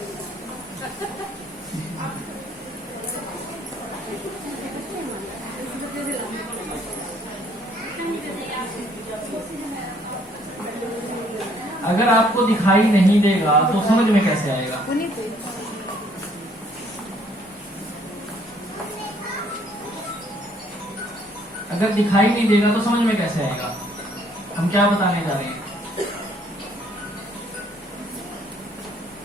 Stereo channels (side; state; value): both; normal; correlation 0.63